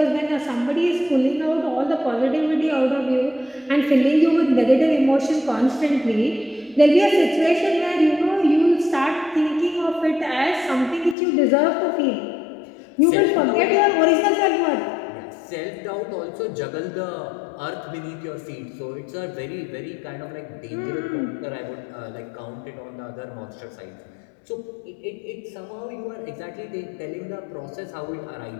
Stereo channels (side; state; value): right; drops out; at 11.2 s